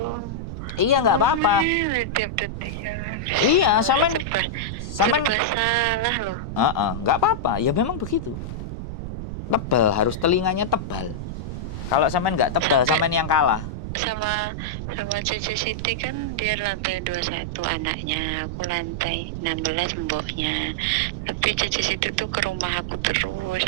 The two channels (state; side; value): noise; right; rumble, 6 dB below the sound